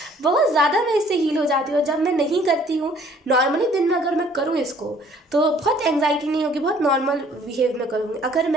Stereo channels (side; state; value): both; normal; correlation 0.58